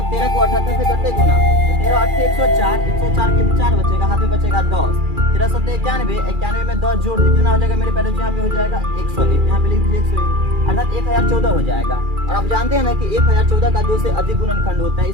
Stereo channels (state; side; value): late; left; 2.4 ms